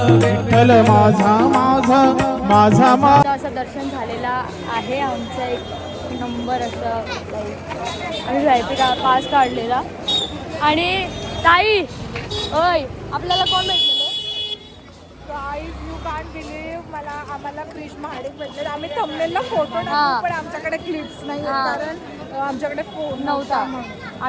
विठ्ठल माझा माझा माझा माझा. असं दर्शन झालेला आहे आमचं. एक नंबर असं आम्ही VIP पास काढलेला. आणि ताई ओय आपल्याला कोण भेटलेलं? यू कांट बिलीव्ह, आम्हाला क्रिश महाडिक भेटले. आम्ही थंबनेलला फोटो टाकू, पण आमच्याकडे क्लिप्स नाही कारण आमच्याकडे फोन नव्हता.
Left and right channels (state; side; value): identical; both; correlation 1.00